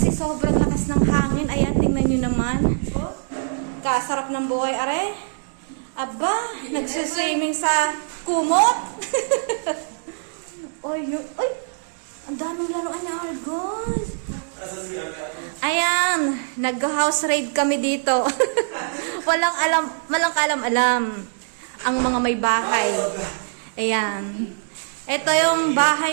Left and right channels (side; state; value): left; silent; digital silence